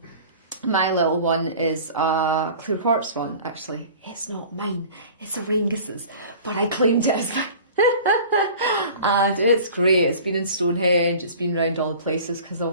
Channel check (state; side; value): inverted; both; correlation -0.43